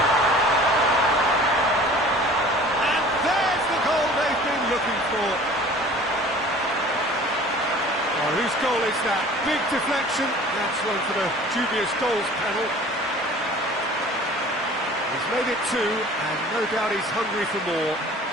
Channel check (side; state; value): both; normal; correlation 0.46